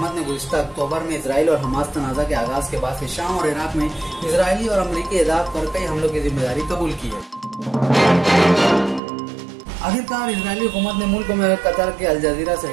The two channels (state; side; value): drops out; left; at 9.0 s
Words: ने गुज़िश्ता अक्टूबर में इसराइल और हमास तनाज़ा के आगाज के बाद से शाम और इराक में इसराइली और अमरीकी एहदाफ पर कई हमलों की जिम्मेदारी कबूल की है। आखिरकार इजरायली हुकूमत ने मुल्क में कतर के अल जजीरा